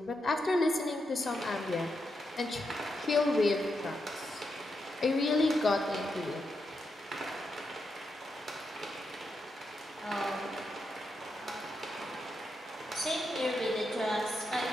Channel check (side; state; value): both; normal; correlation 0.84